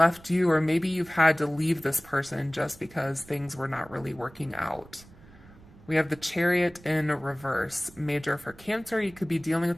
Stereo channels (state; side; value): noise; right; rumble, 23 dB below the sound